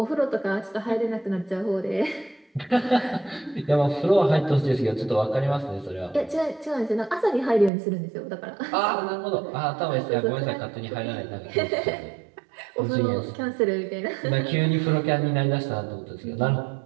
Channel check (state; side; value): drops out; left; at 7.7 s